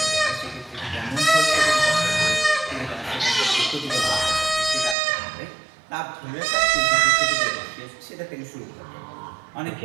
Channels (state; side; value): drops out; left; at 5.0 s